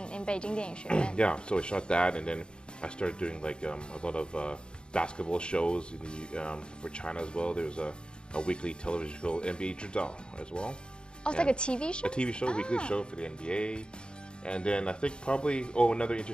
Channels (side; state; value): right; late; 0.051 ms